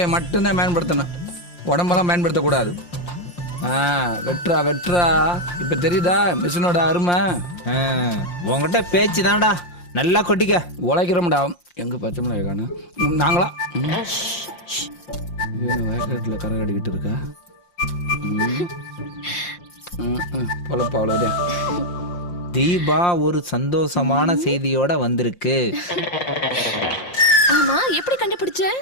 மட்டும்தான் பயன்படுத்தணும், உடம்பெல்லாம் பயன்படுத்தக்கூடாது. வெட்டுறா வெட்டுறா, இப்ப தெரியுதா மிஷினோட அருமை? உங்ககிட்ட பேச்சு தான்டா, நல்லா கொட்டிக்க. உழைக்கிறோம்டா. எங்க பச்சை மிளகாய் காணோம்? நாங்களா வயக்காட்டில் கரை கடிக்கிட்டு இருக்கா? பொழப்பா அவ்வளோதே. தீபா ஒரு சந்தோஷமான செய்தியோட வந்திருக்கு. ஆமா, எப்படி கண்டுபிடிச்ச?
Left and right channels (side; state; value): right; late; 5.7 ms